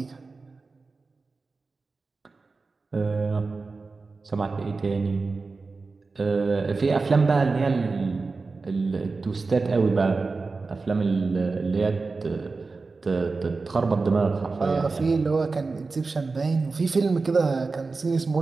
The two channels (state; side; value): quieter; left; 4.0 dB